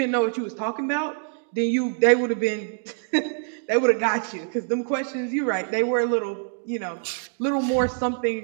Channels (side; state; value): left; silent; 62 dB below the other